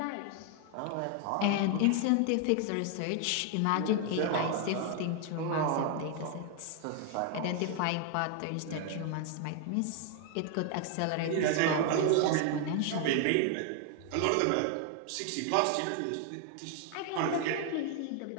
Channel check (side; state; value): both; different; correlation 0.00